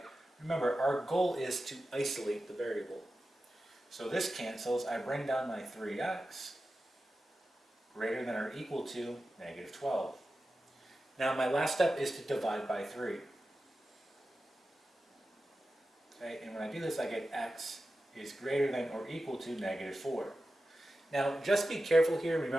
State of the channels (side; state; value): both; normal; correlation 0.93